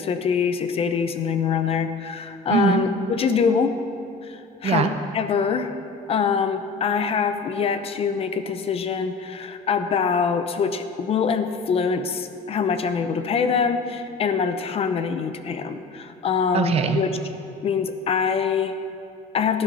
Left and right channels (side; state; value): right; quieter; 4.1 dB